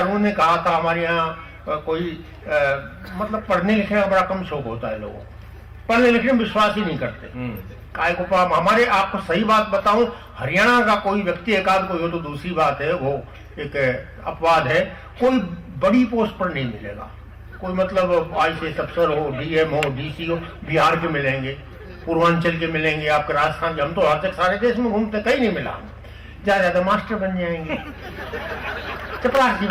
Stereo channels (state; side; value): identical; both; correlation 1.00